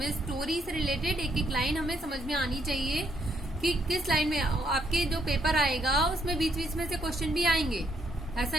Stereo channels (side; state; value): both; normal; correlation 0.73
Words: स्टोरी से रिलेटेड एक एक लाइन हमें समझ में आनी चाहिए कि किस लाइन में आपके जो पेपर आएगा उसमें बीच बीच में से क्वेश्चन भी आएंगे। ऐसा